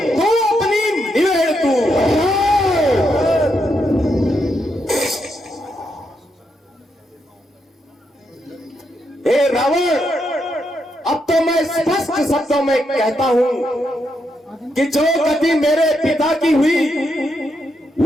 तू अपनी निवेड़ तू। हे रावण, अब तो मैं स्पष्ट शब्दों में कहता हूं कि जो गति मेरे पिता की हुई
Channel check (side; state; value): both; normal; correlation 0.81